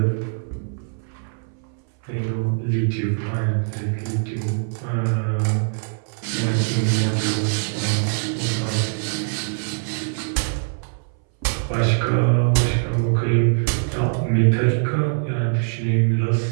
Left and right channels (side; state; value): left; silent; 60 dB below the other